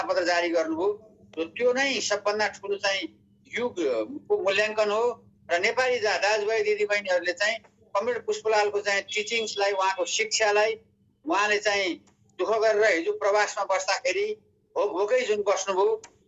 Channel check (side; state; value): both; identical; correlation 1.00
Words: जारी गर्नुभयो, त्यो नै सबभन्दा ठुलो चाहिँ युगको मूल्याङ्कन हो। र नेपाली दाजुभाइ दिदीबहिनीहरूले चाहिँ कमरेड पुष्पलालको चाहिँ टिचिङ्सलाई, उहाँको शिक्षालाई उहाँले चाहिँ दुःख गरेर हिजो प्रवासमा बस्दाखेरि भोकै जुन बस्नुभयो